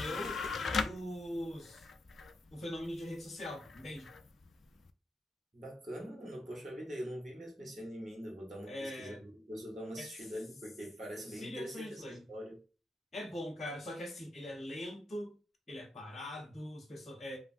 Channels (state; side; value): normal; both; correlation 0.84